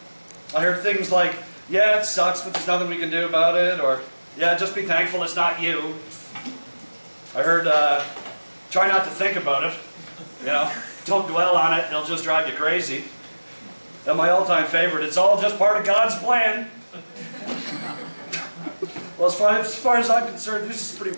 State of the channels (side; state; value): both; inverted; correlation -1.00